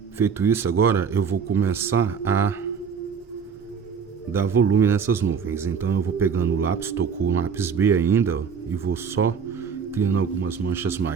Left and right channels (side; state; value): left; quieter; 6.4 dB